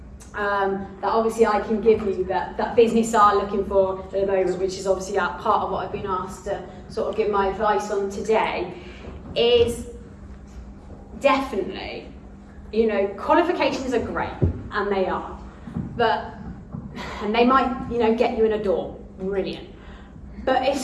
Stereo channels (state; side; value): identical; both; correlation 1.00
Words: that obviously I can give you that business are looking for at the moment, which is obviously part of what I've been asked to sort of give my advice on today, is definitely, you know, qualifications are great, and they are, and they might, you know, get you in a door, brilliant. But